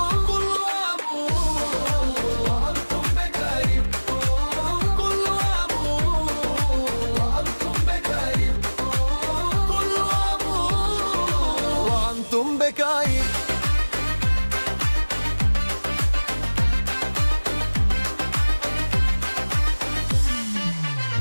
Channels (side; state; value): both; inverted; correlation -1.00